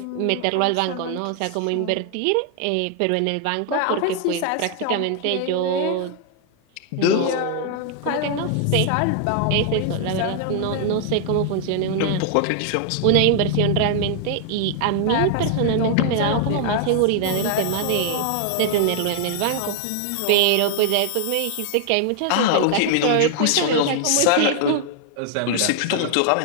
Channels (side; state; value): both; different; correlation 0.00